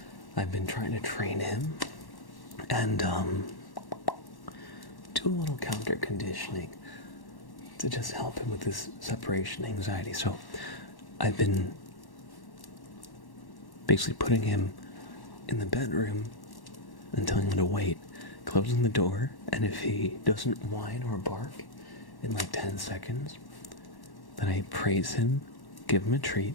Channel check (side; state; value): right; late; 1.1 ms